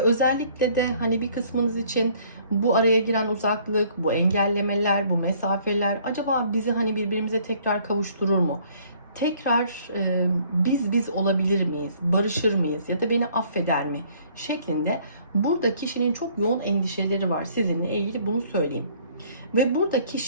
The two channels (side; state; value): both; inverted; correlation -0.60